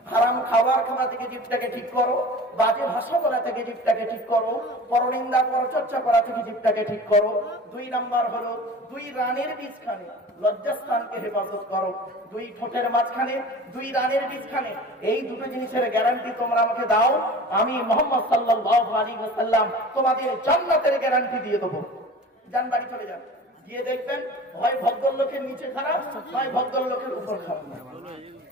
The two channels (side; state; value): both; normal; correlation 0.39